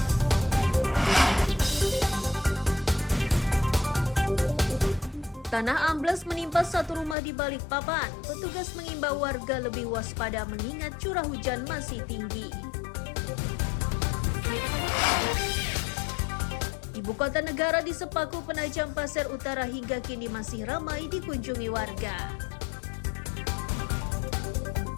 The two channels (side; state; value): right; drops out; at 7.2 s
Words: Tanah ambles menimpa satu rumah di Balikpapan. Petugas mengimbau warga lebih waspada mengingat curah hujan masih tinggi. Ibu kota negara di Sepaku Penajam Pasir Utara hingga kini masih ramai dikunjungi warga.